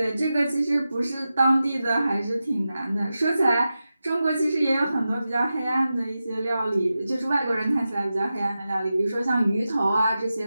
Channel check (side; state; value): both; inverted; correlation -0.92